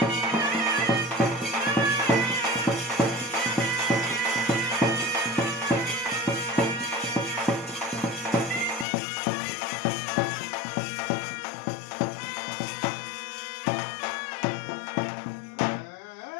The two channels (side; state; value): right; drops out; at 8.8 s